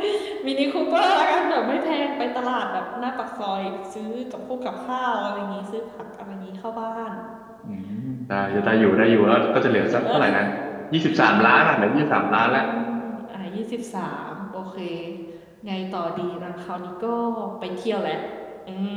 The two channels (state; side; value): identical; both; correlation 1.00